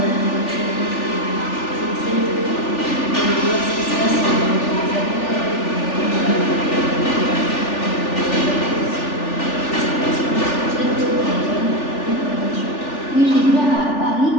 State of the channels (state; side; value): late; right; 3.4 ms